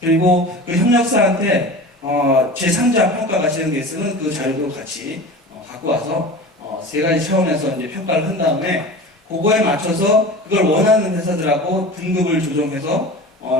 그 협력사한테 제3자 평가가 진행돼 있으면 그 자료도 같이 갖고 와서 3가지 차원에서 이제 평가를 한 다음에, 그거에 맞춰서 그걸 원하는 회사들하고 등급을 조정해서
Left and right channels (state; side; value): normal; both; correlation 0.34